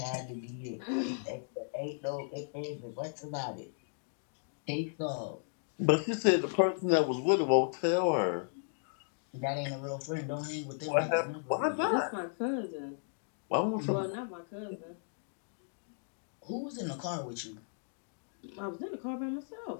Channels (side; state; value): right; silent; digital silence